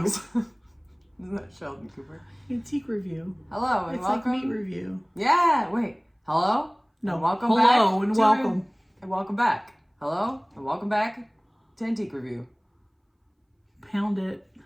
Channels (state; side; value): identical; both; correlation 1.00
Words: Isn't that Sheldon Cooper? Antique Review. Hello and It's welcome. like meat review. Yeah, wait. Hello? No, And welcome back. hello and welcome. And welcome back. Hello and welcome back to Antique Review. Pound it.